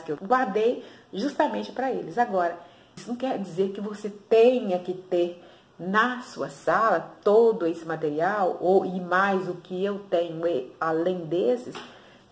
que eu guardei justamente para eles. Agora, isso não quer dizer que você tenha que ter na sua sala todo esse material e mais o que eu tenho além desses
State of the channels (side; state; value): both; identical; correlation 1.00